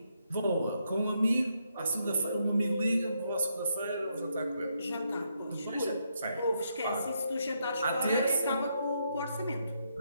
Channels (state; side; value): inverted; both; correlation -0.78